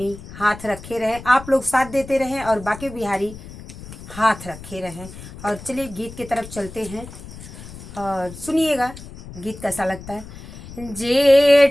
हाथ रखे रहें, आप लोग साथ देते रहें और बाके बिहारी हाथ रखे रहें। और चलिए गीत की तरफ चलते हैं और सुनिएगा गीत कैसा लगता है।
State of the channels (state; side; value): noise; left; rumble, 15 dB below the sound